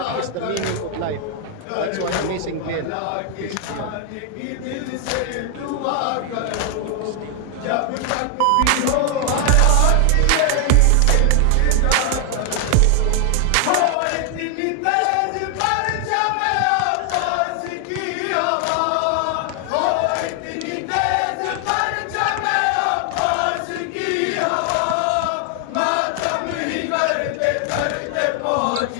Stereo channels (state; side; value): different; both; correlation 0.00